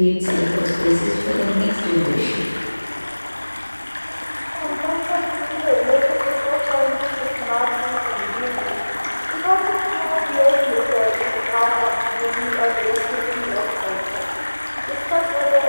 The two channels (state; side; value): inverted; both; correlation -1.00